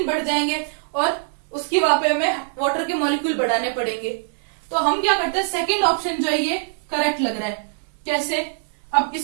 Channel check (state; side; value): silent; left; 64 dB below the other